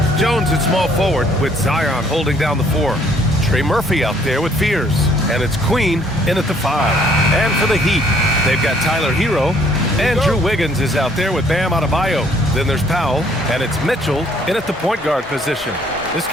Jones at small forward with Zion holding down the 4. Trey Murphy out there with Fears. And it's Queen in at the 5. And for the Heat, they've got Tyler Hero. And Drew Wiggins is out there with Bam Adebayo. Then there's Powell, and it's Mitchell in at the point guard position. This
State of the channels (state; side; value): normal; both; correlation 0.63